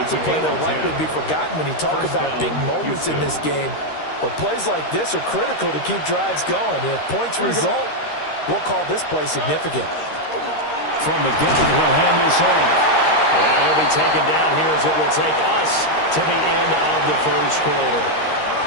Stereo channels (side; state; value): right; late; 13 ms